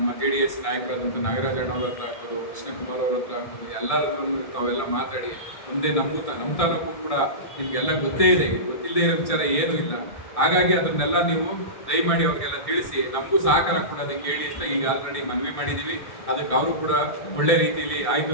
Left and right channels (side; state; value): right; late; 1.6 ms